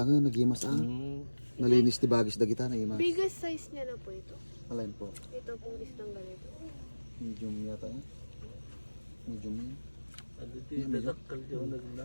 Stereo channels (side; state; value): both; inverted; correlation -1.00